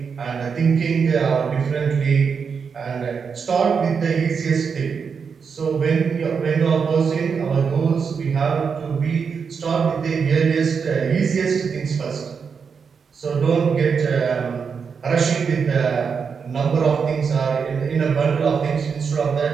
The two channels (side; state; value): left; quieter; 6.0 dB